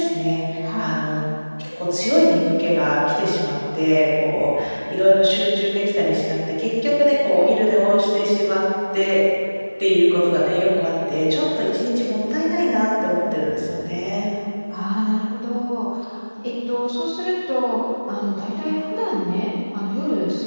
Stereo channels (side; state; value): both; inverted; correlation -1.00